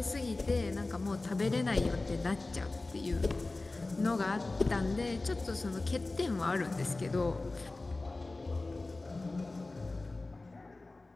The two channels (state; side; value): quieter; right; 3.2 dB